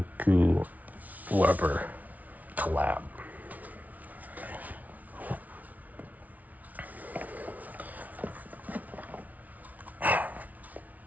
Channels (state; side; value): late; left; 0.073 ms